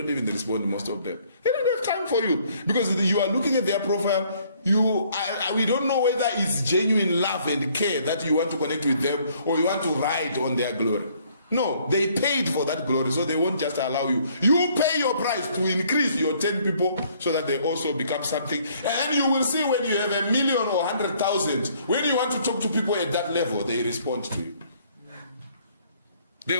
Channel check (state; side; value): inverted; both; correlation -0.63